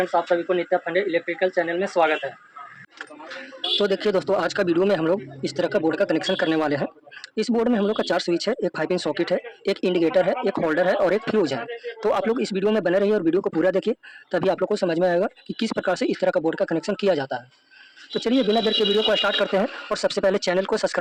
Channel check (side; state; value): both; identical; correlation 1.00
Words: आप सभी को नित्या फंडे इलेक्ट्रिकल चैनल में स्वागत है। तो देखिए दोस्तों, आज का वीडियो में हम लोग इस तरह का बोर्ड का कनेक्शन करने वाले हैं। इस बोर्ड में हम लोग का 4 स्विच है, एक 5 पिन सॉकेट है, एक इंडिकेटर है, एक होल्डर है और एक फ्यूज है। तो आप लोग इस वीडियो में बने रहिए और वीडियो को पूरा देखिए, तभी आप लोग को समझ में आएगा कि किस प्रकार से इस तरह का बोर्ड का कनेक्शन किया जाता है। तो चलिए बिना देर के वीडियो को स्टार्ट करते हैं और सबसे पहले चैनल को